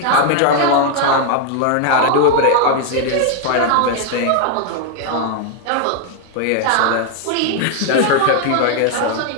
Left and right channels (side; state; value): both; different; correlation 0.01